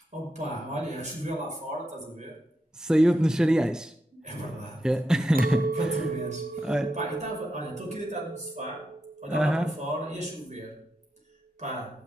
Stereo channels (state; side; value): normal; both; correlation 0.86